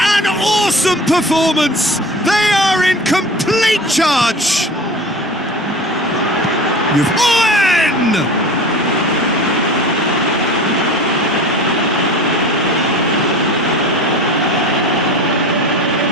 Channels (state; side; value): normal; both; correlation 0.38